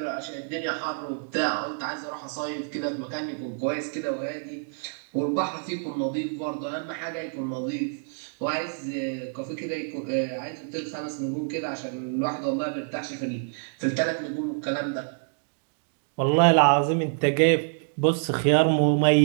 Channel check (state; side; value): silent; left; digital silence